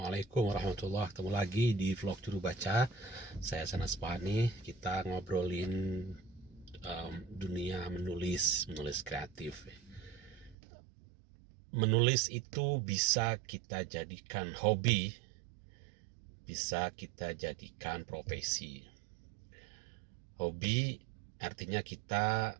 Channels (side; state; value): left; drops out; at 10.6 s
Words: warahmatullahi wabarakatuh. Ketemu lagi di vlog Juru Baca. Saya Sanas Pani. Kita ngobrolin dunia menulis kreatif. Menulis itu bisa kita jadikan hobi, bisa kita jadikan profesi. Hobi artinya kita